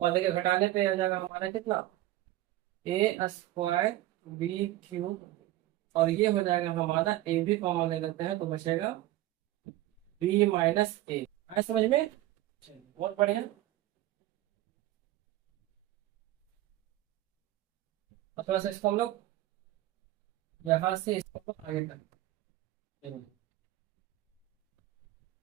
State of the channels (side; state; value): left; quieter; 15.7 dB